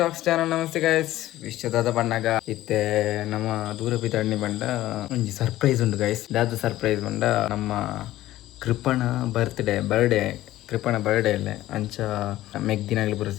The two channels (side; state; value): right; quieter; 15.2 dB